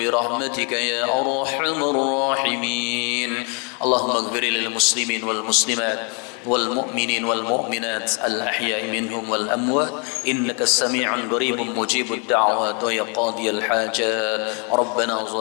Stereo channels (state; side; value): quieter; right; 35.2 dB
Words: يا أرحم الراحمين. اللهم اغفر للمسلمين والمسلمات والمؤمنين والمؤمنات الأحياء منهم والأموات إنك السميع قريب مجيب الدعوات ويا قاضي الحاجات ربنا